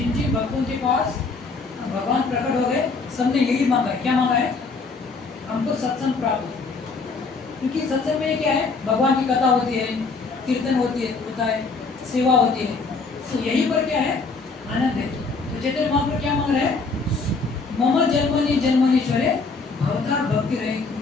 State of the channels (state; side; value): quieter; right; 4.2 dB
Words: जिन भक्तों के पास भगवान प्रकट हो गए, सबने यही मांगा है। क्या मांगा है, हमको सत्संग प्राप्त हो। क्योंकि सत्संग में क्या है, भगवान की कथा होती है, कीर्तन होता है, सेवा होती है। तो यही पर क्या है, आनंद है। तो चैतन्य महाप्रभु क्या मांग रहे हैं, मम जन्मनि जन्मनीश्वरे भवतार भक्ति रहे